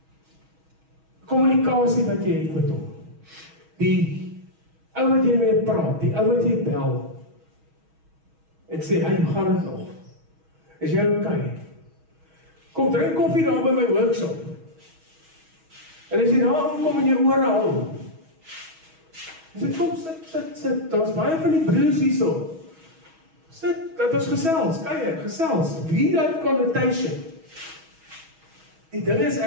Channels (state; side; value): late; left; 6.2 ms